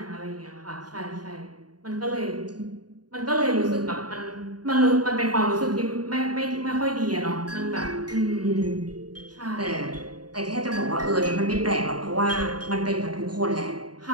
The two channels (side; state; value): left; late; 0.69 ms